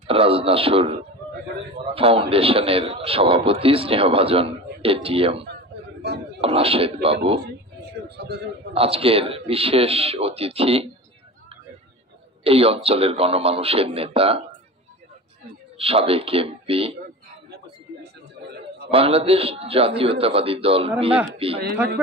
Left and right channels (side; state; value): both; normal; correlation 0.32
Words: রাজনাসুর ফাউন্ডেশনের সভাপতি স্নেহভাজন এটিএম রাশেদ বাবু, আজকের বিশেষ অতিথি এই অঞ্চলের গণমানুষের নেতা, সাবেক এমপি, বাংলাদেশ জাতীয়তাবাদী দল বিএনপি